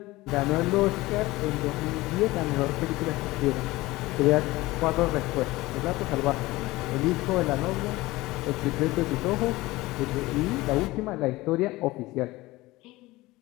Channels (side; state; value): right; quieter; 19.5 dB